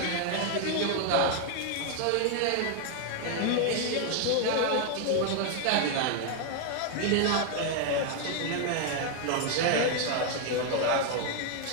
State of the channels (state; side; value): different; both; correlation 0.00